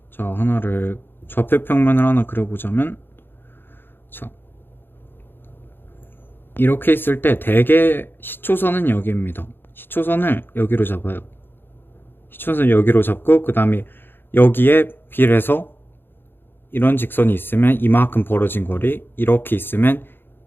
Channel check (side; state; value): right; late; 0.10 ms